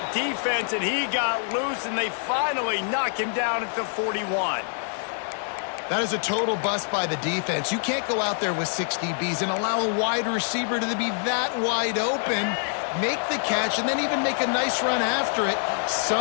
defense, and he got loose, and they finally knock him down at the 41. That is a total bust by the defense. You can't go out there with 6 DBs and allow a wide receiver to be that wide open, make the catch, and then even make a nice run after it.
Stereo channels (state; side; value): silent; right; digital silence